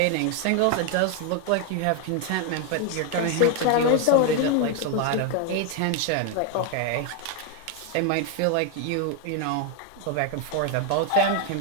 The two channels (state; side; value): different; both; correlation 0.01